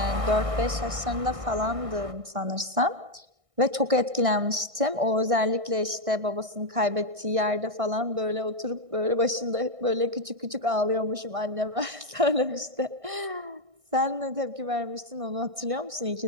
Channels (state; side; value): late; left; 1.6 ms